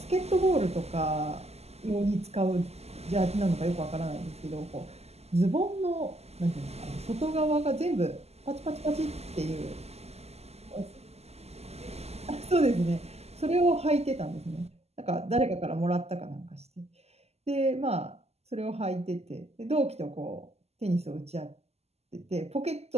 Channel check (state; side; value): late; left; 0.30 ms